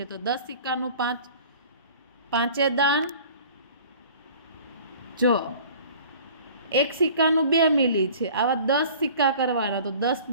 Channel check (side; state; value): both; inverted; correlation -0.46